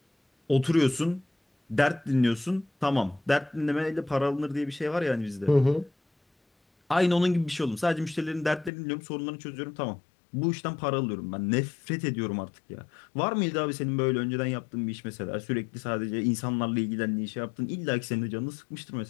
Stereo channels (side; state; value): right; drops out; at 8.7 s